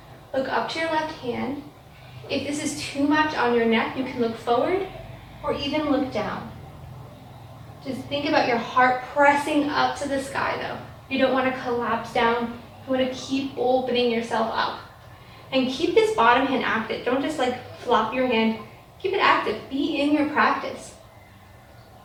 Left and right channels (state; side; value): identical; both; correlation 1.00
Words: Look up to your left hand. If this is too much on your neck, you can look forward or even look down. Just think about your heart pressing up to the sky though. You don't want to collapse down. You want to keep opening yourself up. And keep this bottom hand active. Don't just like flop your hand. Keep it active. Be in your practice.